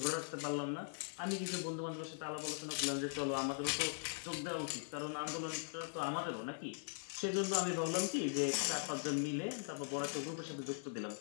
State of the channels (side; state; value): right; silent; 50 dB below the other